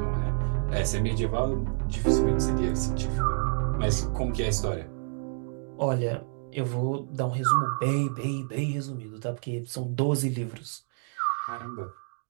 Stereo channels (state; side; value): silent; left; digital silence